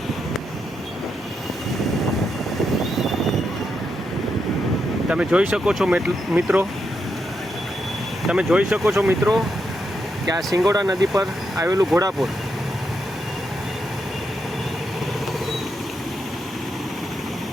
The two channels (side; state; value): both; normal; correlation 0.82